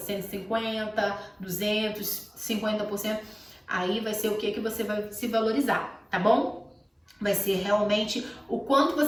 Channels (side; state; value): both; identical; correlation 1.00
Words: 200, 50%. Aí vai ser o que você vai se valorizar, tá bom? Vai ser realmente o quanto